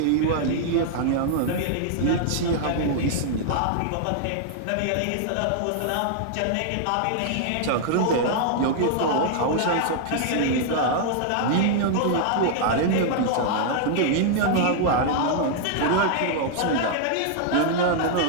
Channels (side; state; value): both; different; correlation -0.01